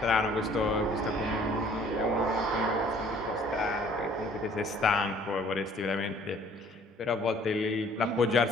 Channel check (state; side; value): normal; both; correlation 0.57